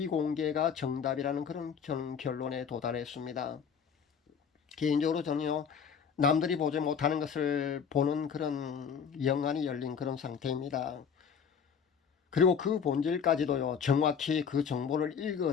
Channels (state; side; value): quieter; right; 6.9 dB